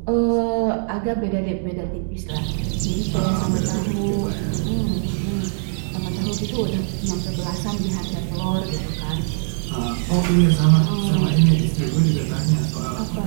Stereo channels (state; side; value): silent; left; digital silence